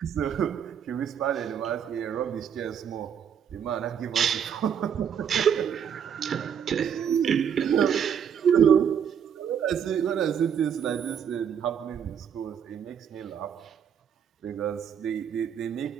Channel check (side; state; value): left; quieter; 8.1 dB